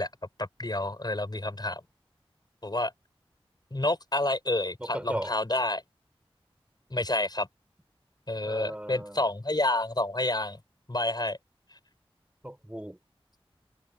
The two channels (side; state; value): both; normal; correlation 0.47